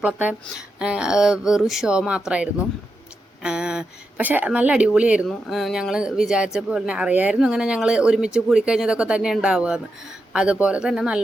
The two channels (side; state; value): both; normal; correlation 0.87